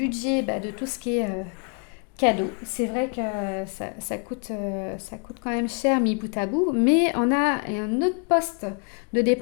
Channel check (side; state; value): right; quieter; 39.5 dB